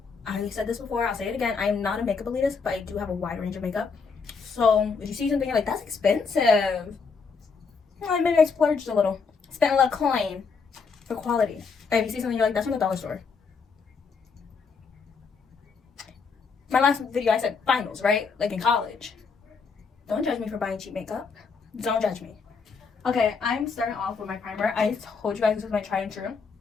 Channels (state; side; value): quieter; right; 5.2 dB